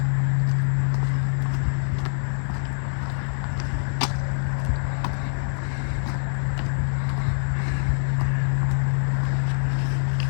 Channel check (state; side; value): silent; right; digital silence